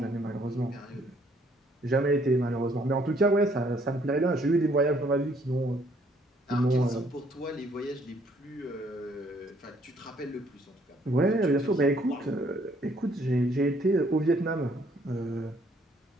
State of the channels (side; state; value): both; normal; correlation 0.65